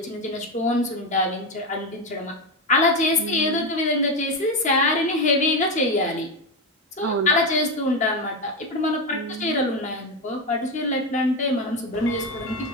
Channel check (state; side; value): normal; both; correlation 0.13